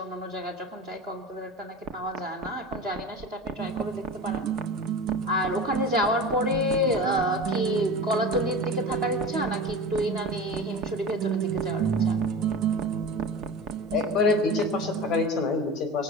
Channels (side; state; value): both; normal; correlation 0.32